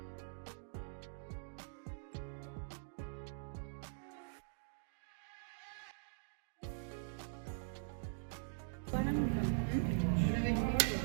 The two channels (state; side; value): silent; left; digital silence